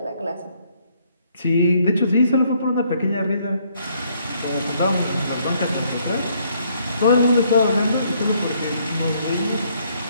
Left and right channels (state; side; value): inverted; both; correlation -0.68